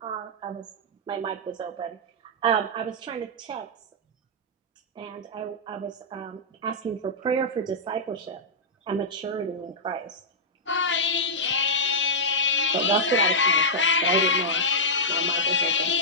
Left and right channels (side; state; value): both; normal; correlation -0.10